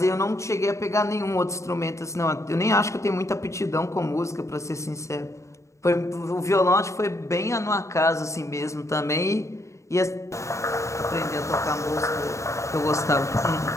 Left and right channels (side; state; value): right; late; 0.14 ms